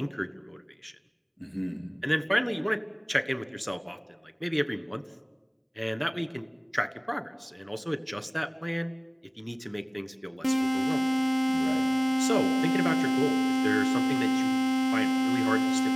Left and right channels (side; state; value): both; identical; correlation 1.00